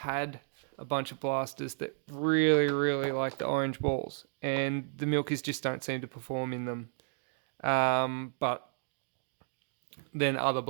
a bunch of blasters that really like the orange balls, and the Milkies just don't seem to perform in them. But then other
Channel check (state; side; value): silent; left; digital silence